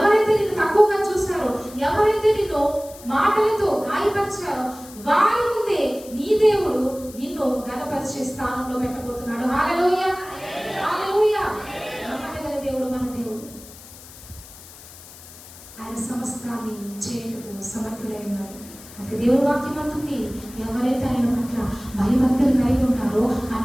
నిన్ను తక్కువగా చూశారో, ఎవరైతే నిన్ను మాటలతో గాయపరిచారో, వారి ముందే నీ దేవుడు నిన్ను ఘనపరిచే స్థానంలో పెట్టబోతున్నాడు. హల్లెలూయా, హల్లెలూయా. నమ్మదగిన దేవుడు మన దేవుడు. ఆయన సమస్తాన్ని చేయటకు సమర్థుడై ఉన్నాడు. అందుకే దేవుడి వాక్యం అంటుంది, ఎవరైతే ఆయన పట్ల భయభక్తులు కలిగి ఉంటారో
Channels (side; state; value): left; noise; hiss, 18 dB below the sound